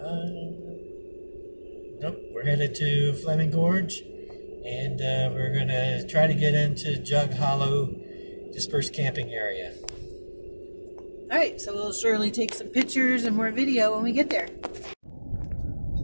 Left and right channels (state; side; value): inverted; both; correlation -1.00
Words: Nope. We're headed to Flaming Gorge, and we're going to try to get into Jug Hollow dispersed camping area. All right, so we'll surely take some pictures and more video when we get there.